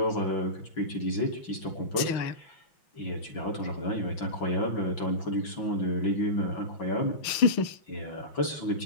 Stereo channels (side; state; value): right; late; 6.4 ms